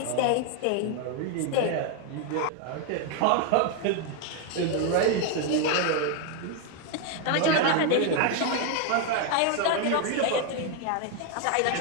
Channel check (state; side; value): different; both; correlation 0.01